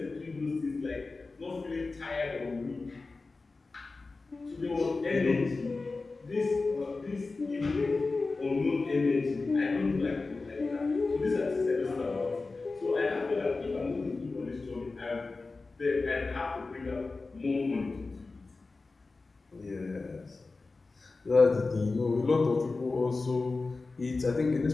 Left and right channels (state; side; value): quieter; right; 3.7 dB